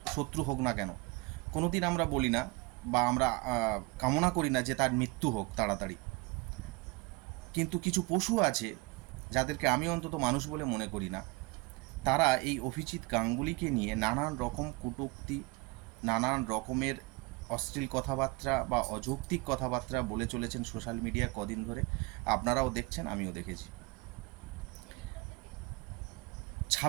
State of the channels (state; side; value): quieter; left; 25.2 dB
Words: শত্রু হোক না কেন, কোনো দিন আমরা বলি না বা আমরা কামনা করি না যে তার মৃত্যু হোক তাড়াতাড়ি। কিন্তু কিছু পশু আছে যাদেরকে আমি অন্তত মানুষ বলে মনে করি না। তারা এই অভিজিৎ গাঙ্গুলিকে নিয়ে নানান রকম কটূক্তি, নানান রকমের অশ্লীল কথাবার্তা বা অযৌক্তিক কথাবার্তা বলে চলেছেন সোশ্যাল মিডিয়া কদিন ধরে। আপনারাও দেখছেন, আমিও দেখেছি।